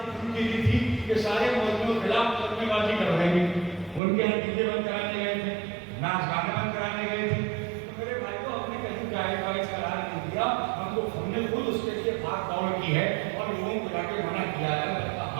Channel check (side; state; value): left; drops out; at 4.0 s